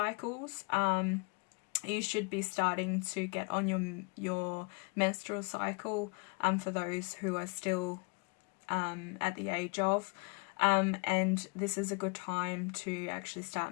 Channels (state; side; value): quieter; right; 33.2 dB